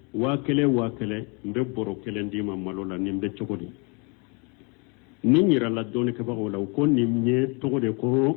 wakele mbe boro kele ndima malo la nimbe chokodi ni nyira la doni ke bago la ko ni nye to de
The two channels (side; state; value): right; quieter; 33.1 dB